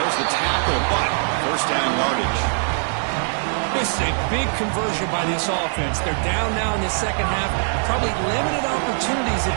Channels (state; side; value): silent; left; digital silence